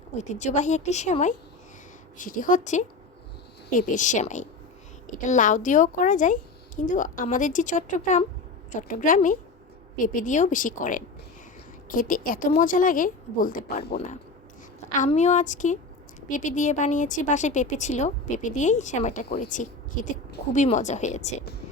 ঐতিহ্যবাহী একটি সেমাই, সেটি হচ্ছে পেঁপের সেমাই। এটা লাউ দিয়েও করা যায়, কিন্তু আমাদের যে চট্টগ্রামে পেঁপে দিয়েও বেশি করেন। খেতে এত মজা লাগে বলতে পারবো না। আমিও আজকে পেঁপে দিয়ে বানিয়েছি, বাসায় পেঁপে ছিল, পেঁপে দিয়েই সেমাইটা করেছি। খেতে খুবই মজা হয়েছে।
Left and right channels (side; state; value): right; quieter; 3.6 dB